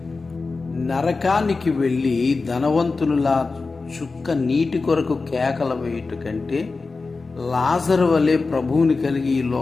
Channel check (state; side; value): quieter; right; 4.0 dB